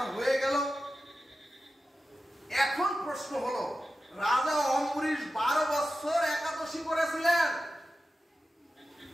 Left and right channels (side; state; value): both; normal; correlation 0.92